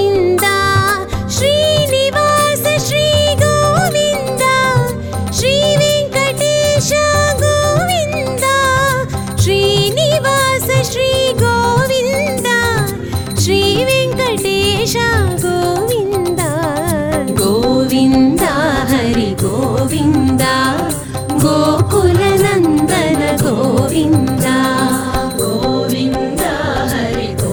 श्रीनिवास श्री गोविन्द श्रीवेङ्कटेश गोविन्द श्रीनिवास श्री गोविन्द श्रीवेङ्कटेश गोविन्द गोविन्द हरि गोविन्द गोकुलनन्दन गोविन्द गोविन्द हरि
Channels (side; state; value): both; identical; correlation 1.00